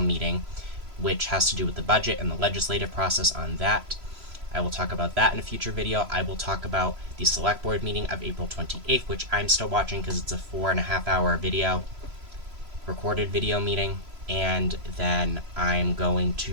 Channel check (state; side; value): late; left; 3.0 ms